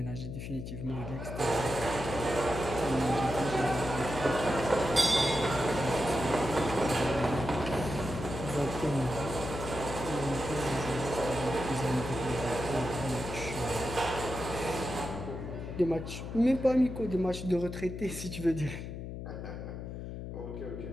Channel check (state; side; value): noise; left; hum, 8 dB below the sound